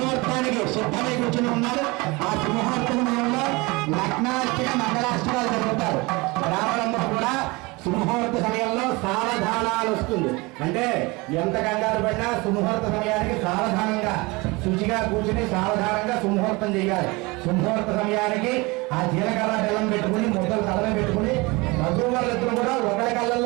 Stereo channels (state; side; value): quieter; left; 24.6 dB